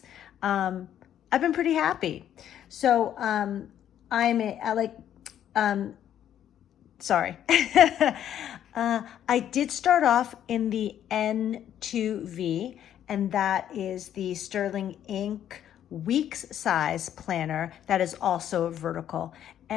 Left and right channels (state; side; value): quieter; right; 10.5 dB